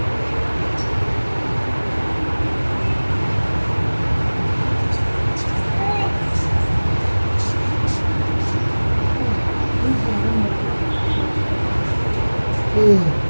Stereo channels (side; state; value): both; inverted; correlation -1.00